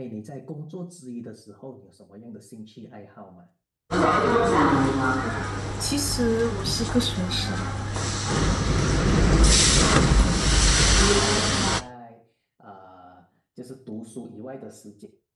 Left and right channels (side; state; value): both; identical; correlation 1.00